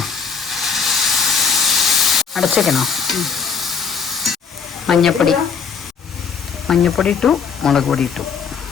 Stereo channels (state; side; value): quieter; right; 6.1 dB